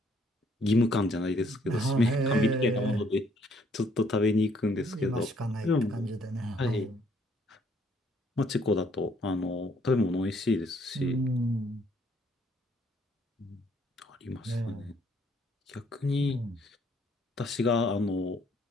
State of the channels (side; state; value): both; normal; correlation 0.66